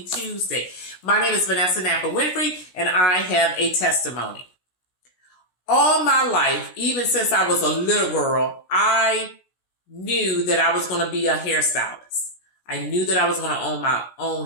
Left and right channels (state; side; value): late; right; 16 ms